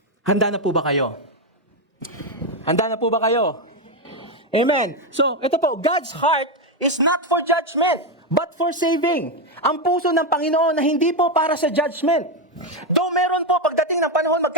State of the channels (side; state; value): both; normal; correlation 0.07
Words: Handa na po ba kayo? Handa na po ba kayo? Amen. So, ito po, God's heart is not for judgment, but for saving. Ang puso ng Panginoon na hindi po para sa judgment. Though meron po, pagdating ng panahon,